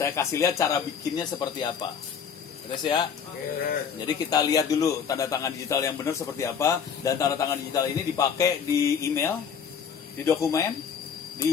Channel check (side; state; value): right; quieter; 7.2 dB